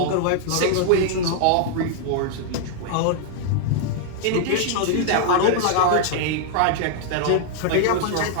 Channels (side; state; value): both; different; correlation -0.01